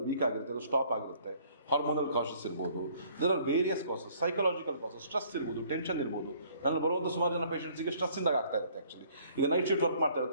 ವೀಕ್ ಆಗಿರುತ್ತೆ, ಅದು ಸ್ಟಾಪ್ ಆಗಿರುತ್ತೆ. ಹಾರ್ಮೋನಲ್ ಕಾಸಸ್ ಇರ್ಬೋದು, there are various causes, psychological causes, stress ಇರ್ಬೋದು, ಟೆನ್ಷನ್ ಇರ್ಬೋದು. ನನ್ನ ಬರುವಂಥ ಸುಮಾರು ಜನ ಪೇಷಂಟ್ಸಿಗೆ ಸ್ಟ್ರೆಸ್ಸಿಂದಾಗ ಆಗ್ತಾ ಇರುತ್ತೆ. ಆ್ಯಕ್ಚುಲಿ ಈಗ ನೈಟ್ ಶಿಫ್ಟ್ ವರ್ಕ್ ಮಾಡ್ತಾ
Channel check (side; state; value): both; inverted; correlation -0.59